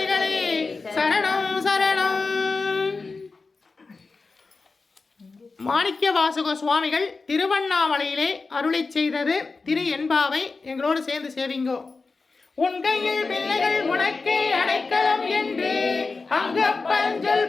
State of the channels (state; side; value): quieter; right; 4.1 dB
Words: சரணம் சரணம். மாணிக்க வாசக சுவாமிகள் திருவண்ணாமலையிலே அருளை செய்தது திரு எண்பாவை எங்களோடு சேர்ந்து சேவிங்கோ. உன் கையில் பிள்ளைகள் உனக்கே அடைக்கலம் என்று அங்கப்பஞ்சல்